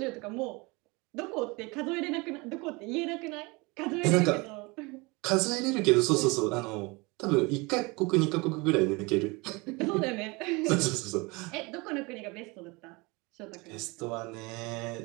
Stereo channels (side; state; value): left; quieter; 26.0 dB